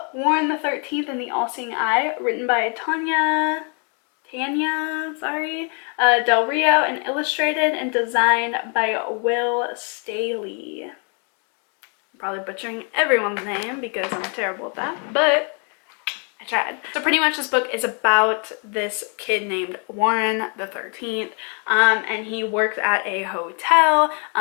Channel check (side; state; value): right; quieter; 38.7 dB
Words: Warren the 13th and the All-Seeing Eye, written by Tanya Del Rio, and illustrated and designed by Will Staley. I'm probably butchering everyone's name because I'm terrible at that, but I tried. So pretty much this book is about this kid named Warren the 13th, and he works at a hotel